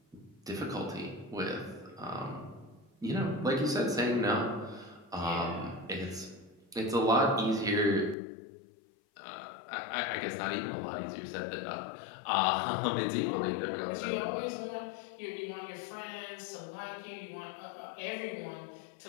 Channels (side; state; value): right; drops out; at 8.2 s